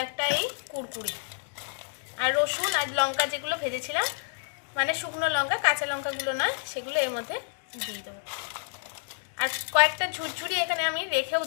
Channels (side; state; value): right; silent; digital silence